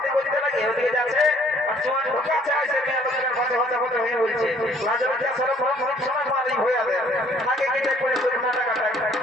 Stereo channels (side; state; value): both; normal; correlation 0.60